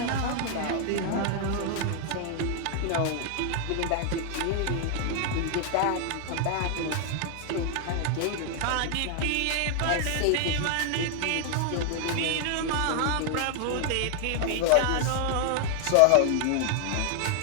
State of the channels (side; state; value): both; different; correlation 0.00